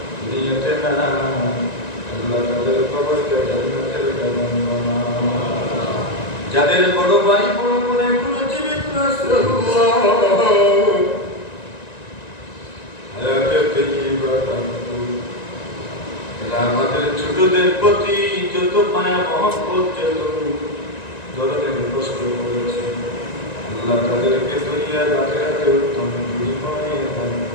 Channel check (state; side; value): late; right; 1.9 ms